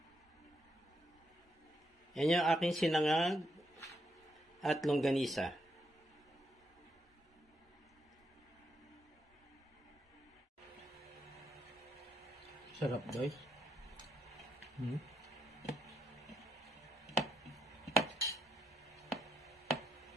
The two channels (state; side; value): normal; both; correlation 0.79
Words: Yan yung aking sinangag at longganisa. Sarap, guys.